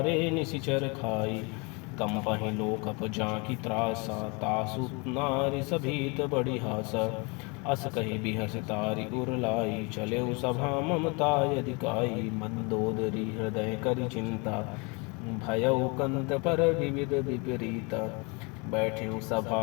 निशिचर खाई। कंपहि लोकप जांकी त्रासा, तासु नारी सभीत बड़ी हासा। अस कहि बिहस तारि उर लाई, चलेउ सभा ममता अधिकाई। मंदोदरी हृदय करि चिंता, भयउ कंत पर विविध विपरीता। बैठ्यु सभा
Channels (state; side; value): quieter; right; 30.2 dB